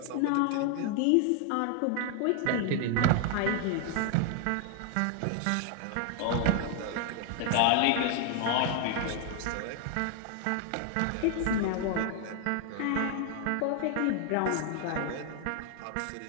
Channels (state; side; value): different; both; correlation 0.00